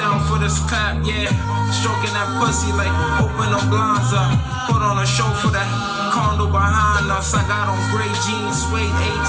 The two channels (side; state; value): both; identical; correlation 1.00